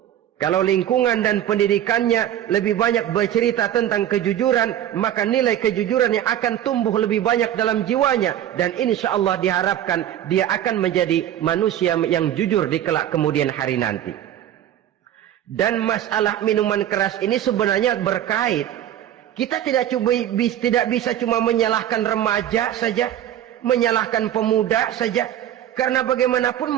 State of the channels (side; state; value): left; quieter; 11.3 dB